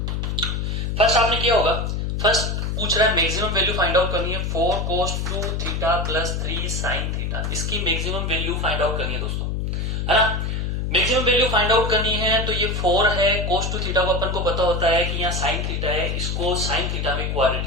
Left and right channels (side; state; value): left; noise; hum, 1 dB below the sound